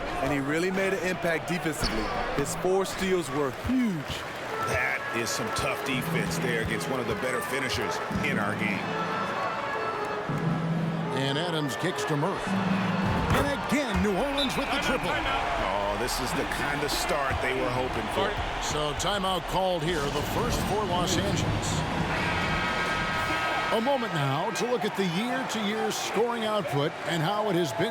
And he really made an impact defensively. His 4 steals were huge. That is some tough defense there against one of the better finishers in our game. And Adams kicks to Murray. And again, New Orleans with the triple. Oh, this is the kind of start they were hoping for. So timeout called here, the first for Los Angeles. A moment now to look at the year-to-year scoring output and how it has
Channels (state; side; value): identical; both; correlation 1.00